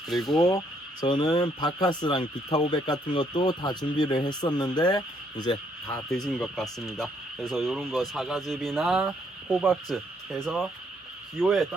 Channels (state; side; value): normal; both; correlation 0.69